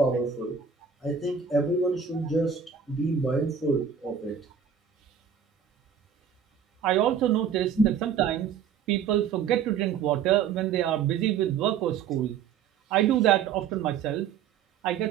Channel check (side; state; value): left; quieter; 7.4 dB